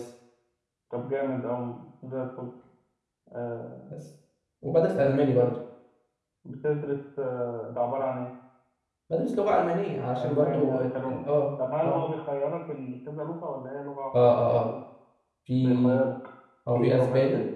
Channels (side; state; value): both; identical; correlation 1.00